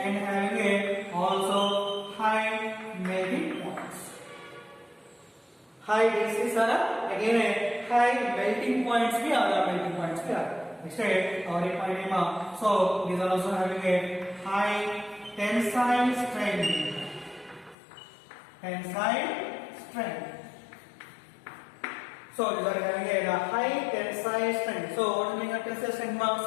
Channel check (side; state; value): right; drops out; at 17.8 s